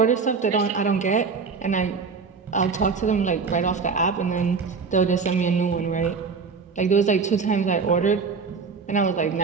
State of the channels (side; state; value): left; quieter; 5.2 dB